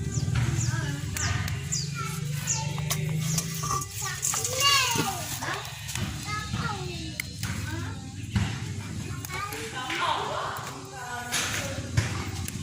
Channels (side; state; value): both; identical; correlation 1.00